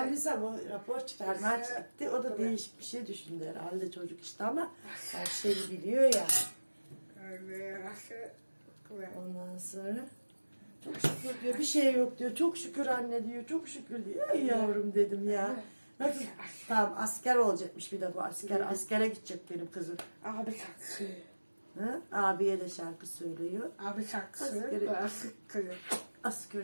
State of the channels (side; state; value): both; inverted; correlation -1.00